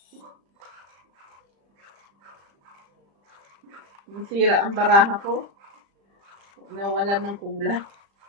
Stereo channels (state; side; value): late; left; 35 ms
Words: Nasira ang baraha ko. Nawalan ng kulay.